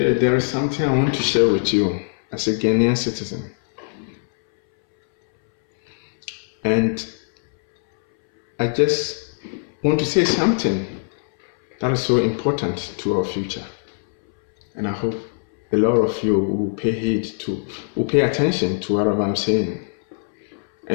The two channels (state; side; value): silent; right; 63 dB below the other